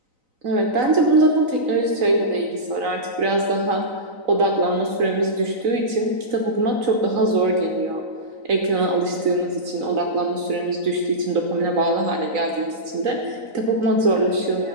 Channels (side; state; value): left; late; 3.9 ms